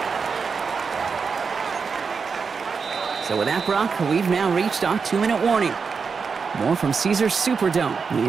So with that, Brock, we've now reached our 2-minute warning. More from Caesars Superdome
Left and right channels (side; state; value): left; quieter; 5.4 dB